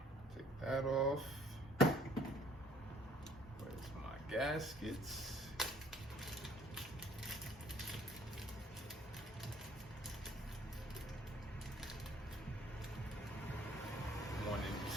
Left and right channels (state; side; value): normal; both; correlation 0.58